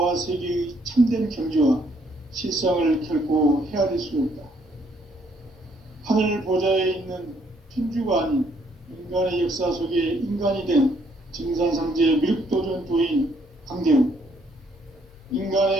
참된 경지와 실상을 결코 헤아릴 수 없다. 하늘 보좌에 있는 천주가 아닌 인간의 역사 속에 인간이 된 증산상제 미륵도전 도인 강대우,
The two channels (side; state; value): both; normal; correlation 0.68